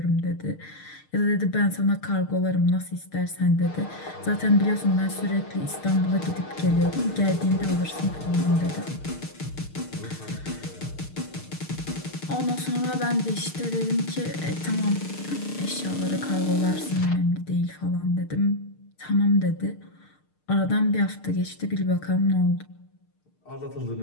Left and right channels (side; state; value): right; late; 6.6 ms